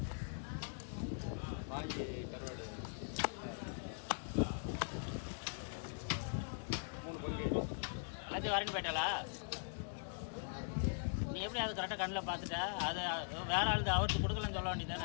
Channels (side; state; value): right; silent; digital silence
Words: வாங்கி கருவாடு 3 பங்கு எல்லாத்தையும் வரேன்னு போயிட்டாளா? நீ எப்படி அது கரெக்டாக கண்ணில் பார்த்துட்ட? அது வேற ஆள் அவருக்கு கொடுக்கலன்னு சொல்ல